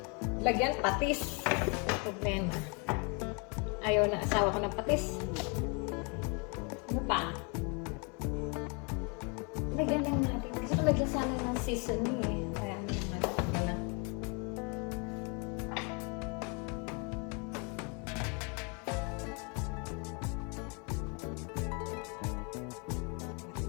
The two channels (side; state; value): right; quieter; 34.0 dB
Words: lagyan patis. Problema. Ayaw na asawa ko ng patis. Ano pa? Lagyan lang natin. Kasi kung lagyan sana ng seasoning eh. Kaya naman lang.